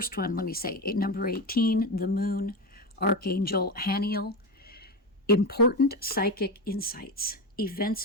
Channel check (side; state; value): both; normal; correlation 0.18